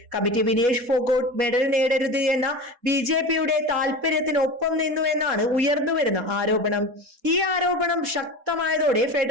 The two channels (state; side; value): late; left; 4.1 ms